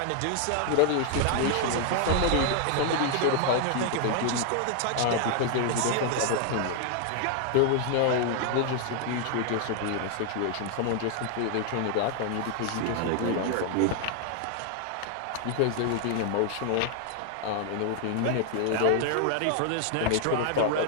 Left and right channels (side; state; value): both; different; correlation 0.00